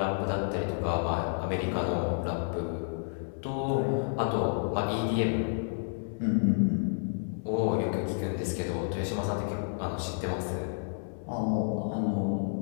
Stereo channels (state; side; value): silent; right; 57 dB below the other